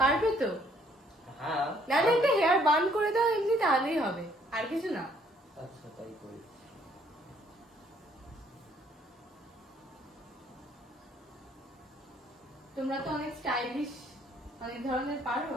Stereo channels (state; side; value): normal; both; correlation 0.65